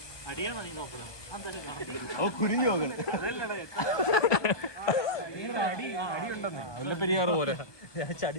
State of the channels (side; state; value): right; late; 1.2 ms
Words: ഓ, കുരിഞ്ഞു നോക്കണം. മുല്ലപ്പെരിയാറ് പോലെ.